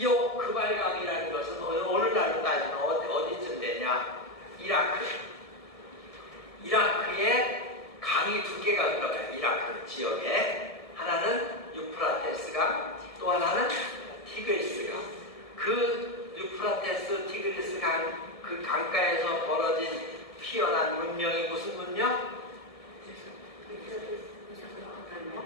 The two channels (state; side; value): late; right; 1.7 ms